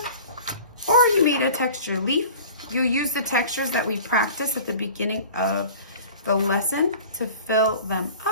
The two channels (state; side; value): inverted; both; correlation -0.42